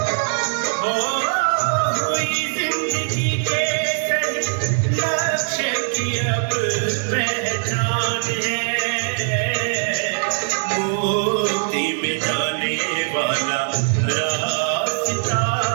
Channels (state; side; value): silent; left; digital silence